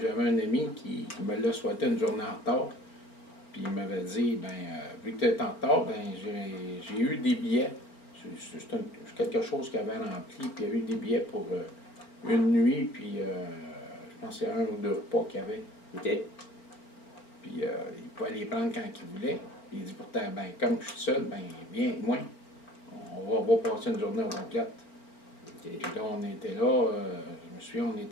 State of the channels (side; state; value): right; late; 4.4 ms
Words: j'avais un ami qui me l'a souhaité une journée en retard. Puis il m'avait dit, vu que tu es en retard, j'ai eu des billets. C'est quelque chose qu'il avait rempli. Puis il y avait eu des billets pour une nuit. Puis je pense que c'est 1 ou 2 repas qu'il y avait. OK. Puis il pouvait les prendre quand il voulait. Puis il dit pourtant, comme je suis seul, viens avec moi. On va passer une journée complète. OK. Puis là, on était là, je me souviens, on